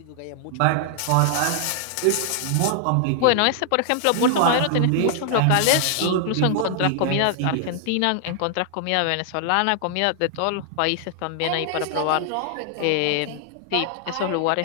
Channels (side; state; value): both; different; correlation 0.00